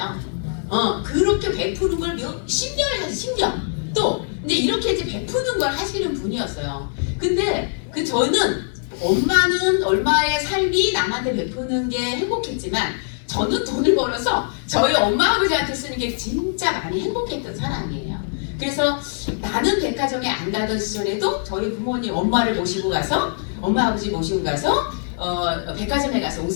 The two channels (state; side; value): silent; right; digital silence